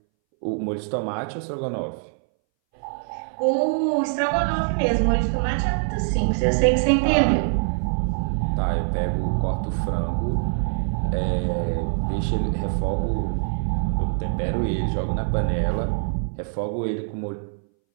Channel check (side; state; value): left; silent; 62 dB below the other